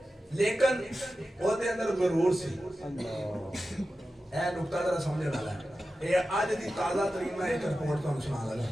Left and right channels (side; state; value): both; normal; correlation 0.93